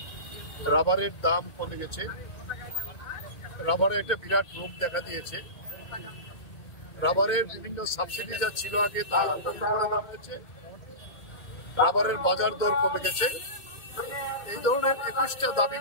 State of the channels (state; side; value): late; right; 2.2 ms